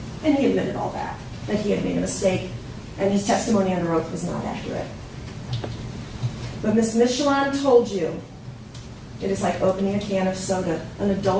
And he admitted all that he had made a mistake, and his testimony under oath was not accurate. But Ms. Michelon told you it is like opening a can of soda. An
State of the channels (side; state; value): both; identical; correlation 1.00